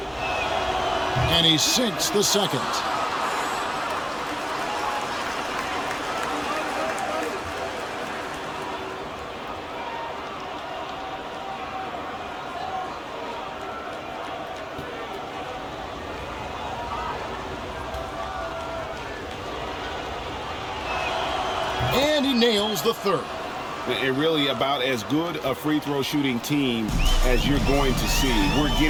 And he sinks the second. And he nails the third. And really about as good a free throw shooting team as you're going to see. We're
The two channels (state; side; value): identical; both; correlation 1.00